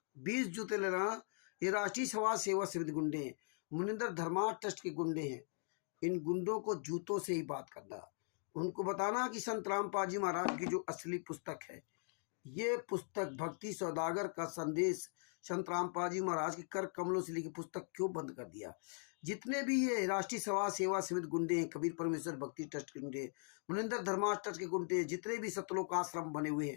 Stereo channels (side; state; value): right; silent; 51 dB below the other